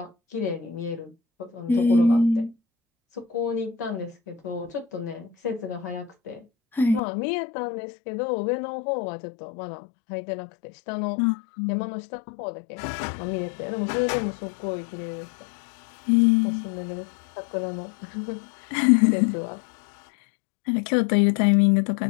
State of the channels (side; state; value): right; drops out; at 7.0 s